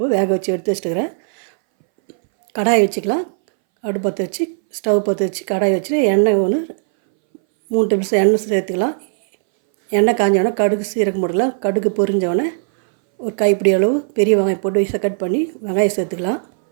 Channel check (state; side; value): silent; left; 63 dB below the other